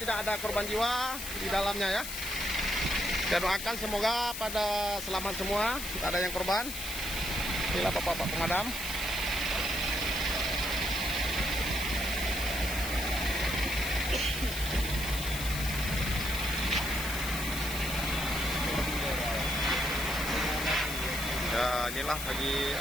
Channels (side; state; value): left; noise; hiss, 6 dB below the sound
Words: ada korban jiwa di dalamnya ya. Kita doakan semoga pada selamat semua, tidak ada yang korban. Inilah bapak-bapak pemadam. Ya, inilah lagi